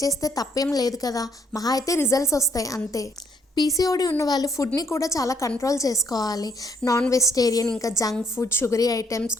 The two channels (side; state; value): both; normal; correlation 0.69